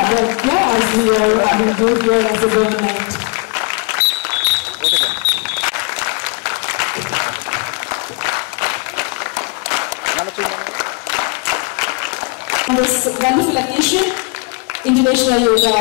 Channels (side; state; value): right; quieter; 29.9 dB